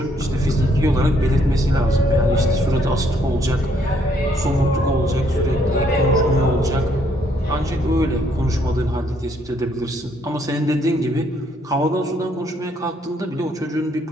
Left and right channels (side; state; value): both; normal; correlation 0.69